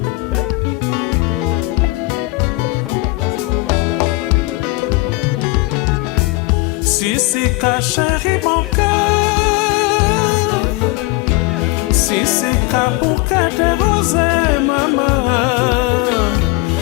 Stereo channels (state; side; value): quieter; right; 22.3 dB